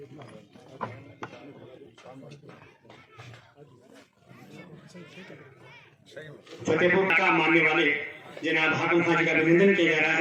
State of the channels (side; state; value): both; identical; correlation 1.00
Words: फतेहपुर का मानने वाले जनाब हाकिम खान जी का अभिनंदन किया जा रहा